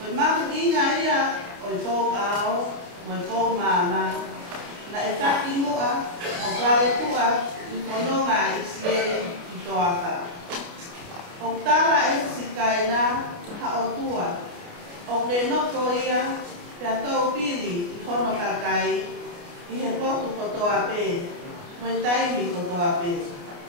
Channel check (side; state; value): left; late; 29 ms